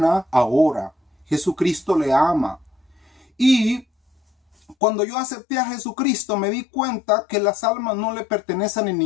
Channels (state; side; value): drops out; right; at 4.8 s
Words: ahora. Jesucristo le ama. Y cuando yo acepté a Jesucristo, me di cuenta que las almas no le pertenecen a